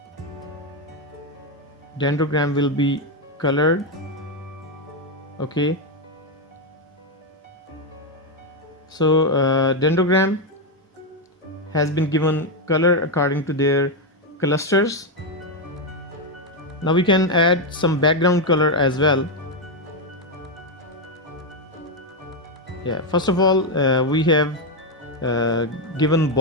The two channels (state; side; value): normal; both; correlation 0.05